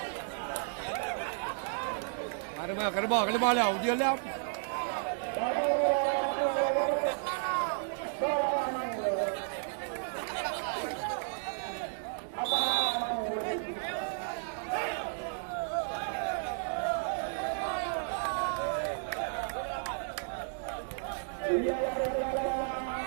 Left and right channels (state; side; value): silent; left; digital silence